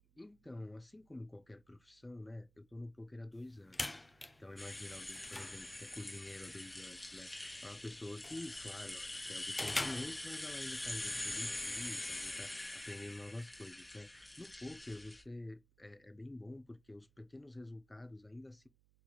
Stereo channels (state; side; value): noise; right; hum, 29 dB below the sound